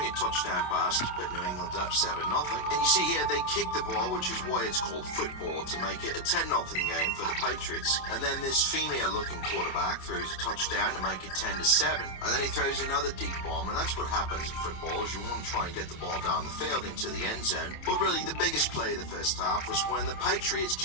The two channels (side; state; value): right; late; 27 ms